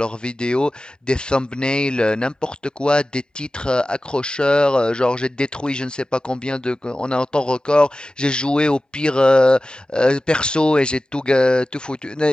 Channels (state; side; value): normal; both; correlation 0.95